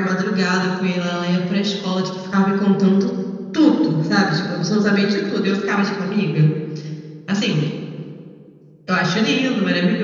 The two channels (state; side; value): identical; both; correlation 1.00